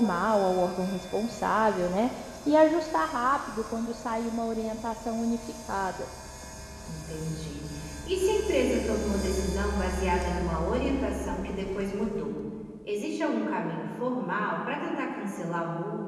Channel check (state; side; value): identical; both; correlation 1.00